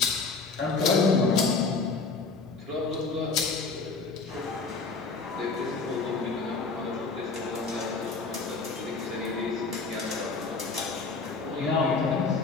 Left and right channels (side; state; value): right; quieter; 4.2 dB